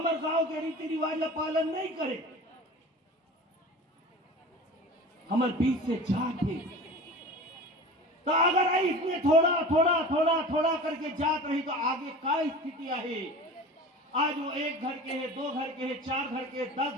गांव के रीति रिवाज का पालन नहीं करे। हमारे बीच से जात है, तो अगर इसमें थोड़ा थोड़ा थोड़ा थोड़ा करके जात रही तो आगे क्या स्थिति है। आज वो 1 घर के है, 2 घर के है, 4 घर के, 10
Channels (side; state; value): both; normal; correlation 0.36